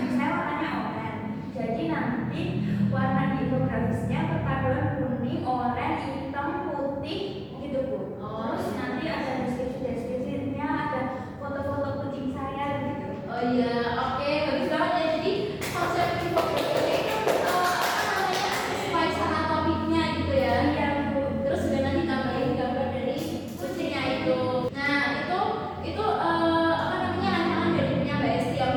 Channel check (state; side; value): identical; both; correlation 1.00